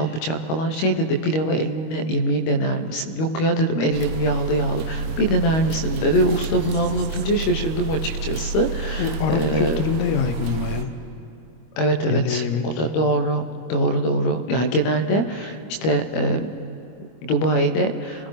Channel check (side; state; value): right; late; 25 ms